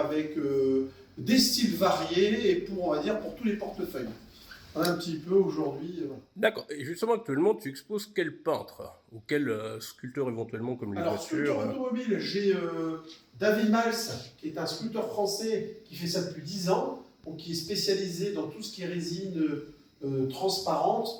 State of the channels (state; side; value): identical; both; correlation 1.00